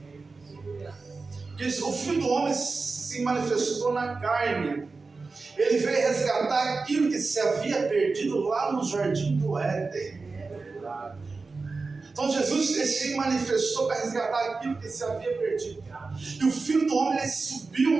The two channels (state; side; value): quieter; left; 4.1 dB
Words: Porque o Filho do Homem se manifestou na carne. Ele veio resgatar aquilo que se havia perdido lá no jardim do Éden. Então Jesus se manifestou para resgatar aquilo que se havia perdido. E o Filho do Homem, ele subiu